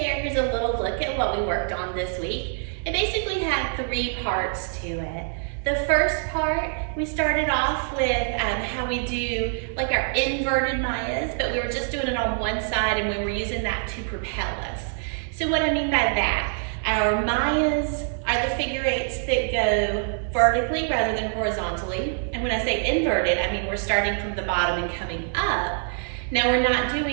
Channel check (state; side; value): silent; left; 62 dB below the other